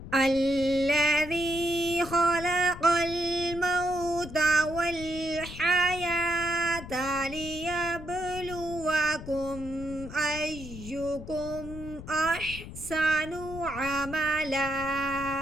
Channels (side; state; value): left; noise; rumble, 12 dB below the sound